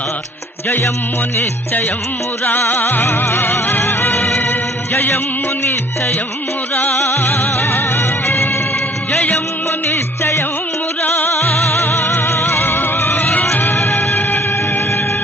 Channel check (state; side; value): normal; both; correlation 0.56